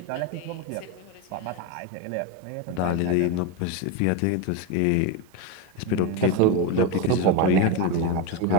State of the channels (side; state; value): both; different; correlation 0.04